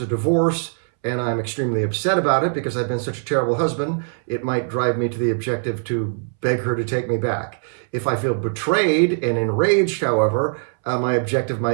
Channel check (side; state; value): left; silent; 65 dB below the other